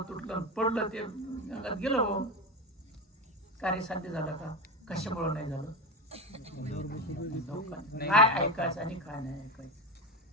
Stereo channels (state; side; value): normal; both; correlation 0.19